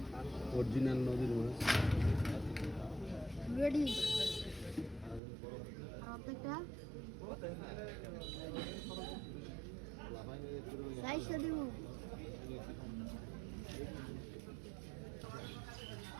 অরিজিনাল নদীর মাছ। রেডি প্রত্যেকটা সাইজটা দিব।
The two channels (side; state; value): left; drops out; at 5.2 s